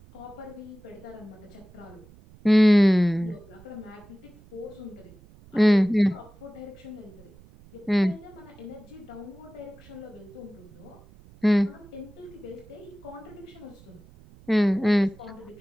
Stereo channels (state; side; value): noise; right; rumble, 23 dB below the sound